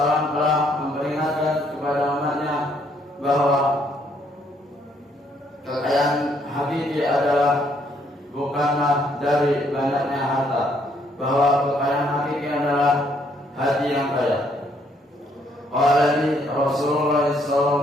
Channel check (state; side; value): normal; both; correlation 0.69